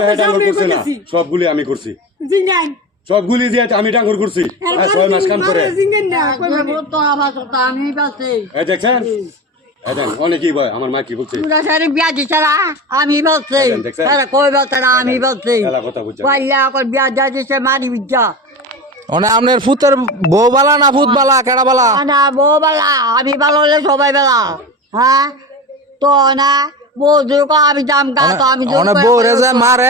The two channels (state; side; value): normal; both; correlation 0.27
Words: হেড ডাঙ্গর করছে না, সবগুলি আমি করছি, জিঙ্গান সবগুলি জিয়া আমি ডাঙ্গর করছি। 6 মাস কাম করে জিঙ্গান না তো আমার কথা আমি বলছি। এই দেখছেন, এই দেন অনেকই ভয়। আমার মা কি বলছে, পুরা সারি বিয়া দিছে না, আমি বলছি। দেখছেন? তারা কই বলছে না, আমি বলছি। এলা কথা বুঝছেন? পাইলা এখন বিয়া দিয়া দিছে মারি বিদ্যা। মানে আপনার ফুতের বউ বালা না ফুত বালা, কেডা বালা? না বউ বেলা, আমি ভালো হলে সবাই বেলা। হ্যাঁ তো না বউ যদি আমি দাম গা তো আমি মানে বউরে যে